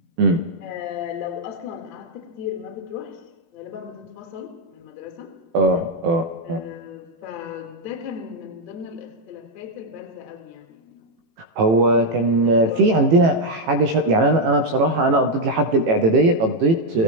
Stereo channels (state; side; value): late; left; 18 ms